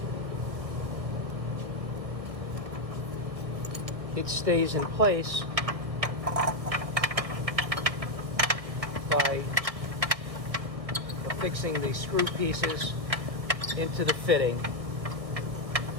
It stays in place by affixing these screw pieces into the fitting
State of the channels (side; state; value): left; late; 1.7 ms